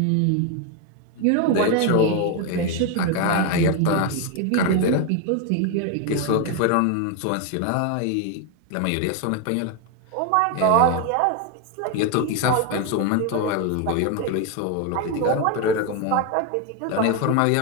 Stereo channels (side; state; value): both; different; correlation 0.01